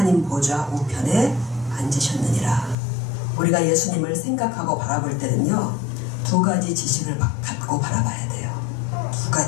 보좌 우편에 앉으셨느니라. 우리가 예수님을 생각하고 바라볼 때는요, 두 가지 지식을 갖고 바라봐야 돼요. 두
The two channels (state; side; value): drops out; right; at 2.8 s